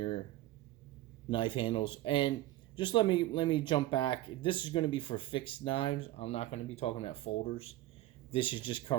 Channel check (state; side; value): quieter; left; 15.9 dB